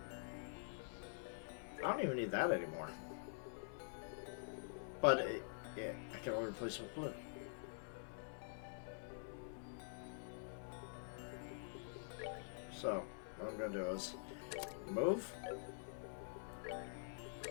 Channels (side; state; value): right; silent; digital silence